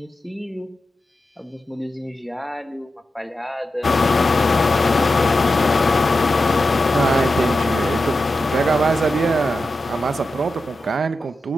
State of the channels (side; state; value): both; normal; correlation 0.91